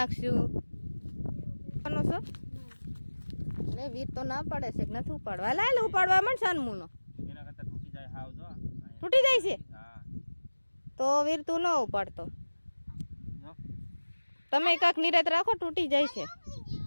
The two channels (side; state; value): both; inverted; correlation -1.00